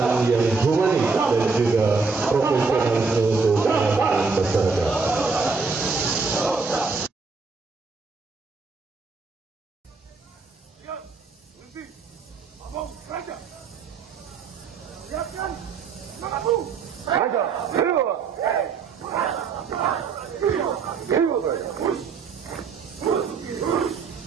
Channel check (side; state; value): left; quieter; 4.8 dB